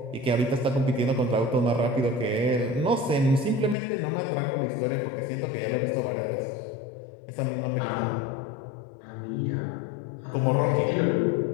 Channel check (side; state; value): right; drops out; at 3.8 s